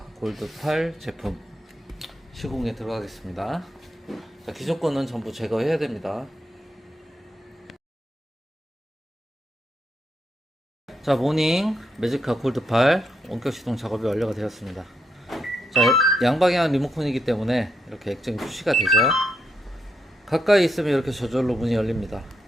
골드 8 제품 시공에 들어가겠습니다. 자, 기존 거는 전부 제거해야 됩니다. 자, 모닝 매지카 골드 8 원격 시동 작업이 완료가 되었습니다. 자, 양방향 리모컨이기 때문에 이렇게 액정이 표시가 되죠. 가까이 있으면 이렇게 저절로 문이 열립니다.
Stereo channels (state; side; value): normal; both; correlation 0.80